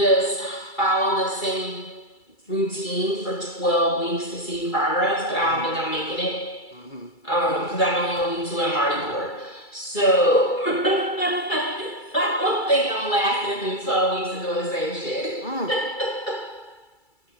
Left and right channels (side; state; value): right; late; 2.3 ms